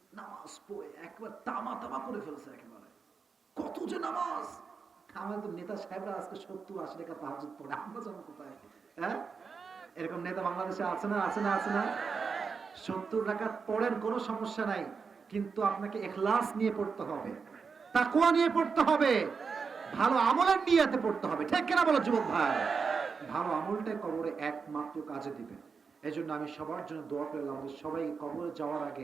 নামাজ পড়ে একবার তামা তামা করে ফেলছে একেবারে, কত যে নামাজ। আমাদের তো নেতা সাহেবরা আজকে 70-80 টাকা তাহাজ্জুদ পড়ে, আমরা যাবো কোথায়? হ্যাঁ, এরকম নেতা বাংলাদেশে আছে না? আছে না? আছে না? 70 রাকাত পড়েন, কোনো সমস্যা নাই, কিন্তু আপনাকে ইখলাস নিয়ে পড়তে হবে, তাকওয়া নিয়ে পড়তে হবে, ভালো আমলের নিয়তে পড়তে হবে। ঠিক কিনা বলো যুবক ভাই? ভালো আমলটাই কবরে একমাত্র কাজে দিবে। এজন্য আমি সবার জন্য দোয়া করলাম, আমাদের সবাই কবরে যাওয়ার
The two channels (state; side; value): quieter; left; 5.4 dB